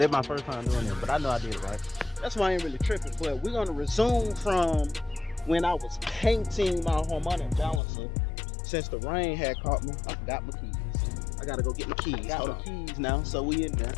my first time doing it, but I know I did it right. That's why I ain't really tripping. But we're gonna resume from when I was painting my harmonic balancer. Since the rain had caught me, I forgot my keys. I gotta go get my keys. Got my keys now, so we in there.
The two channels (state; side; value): drops out; right; at 7.8 s